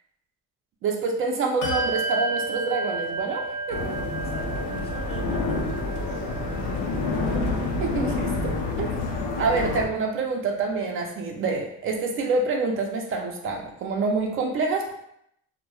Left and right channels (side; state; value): both; normal; correlation 0.09